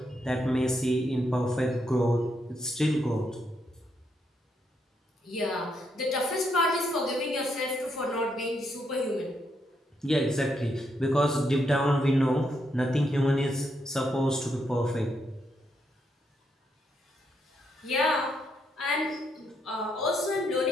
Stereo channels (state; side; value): normal; both; correlation 0.78